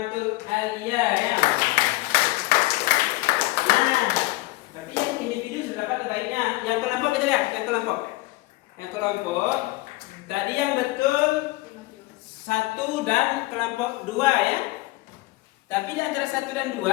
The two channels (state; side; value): quieter; right; 20.3 dB